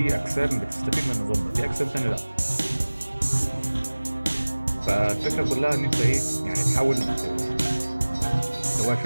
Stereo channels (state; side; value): inverted; both; correlation -1.00